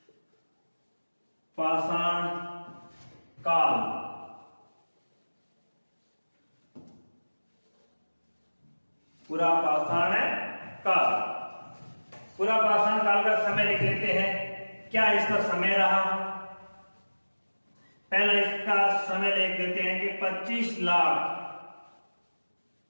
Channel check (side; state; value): both; inverted; correlation -1.00